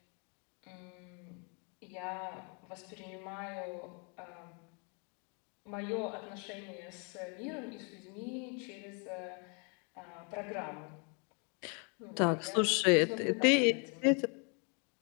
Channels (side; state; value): right; quieter; 36.2 dB